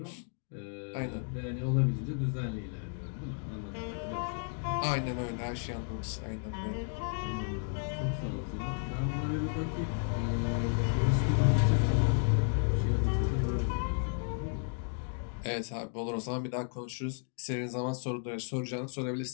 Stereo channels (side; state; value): right; silent; 56 dB below the other